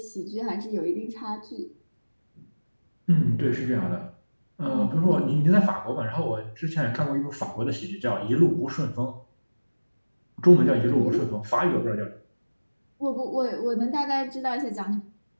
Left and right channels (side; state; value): both; inverted; correlation -1.00